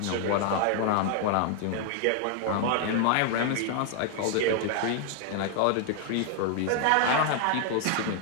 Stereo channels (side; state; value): both; different; correlation 0.00